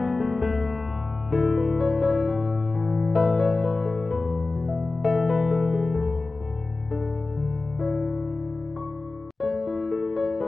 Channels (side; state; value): right; quieter; 3.4 dB